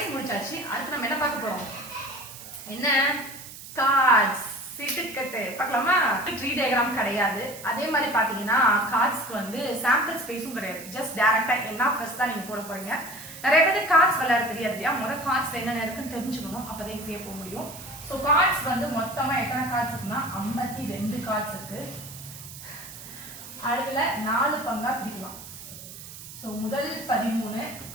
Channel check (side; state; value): right; noise; hiss, 14 dB below the sound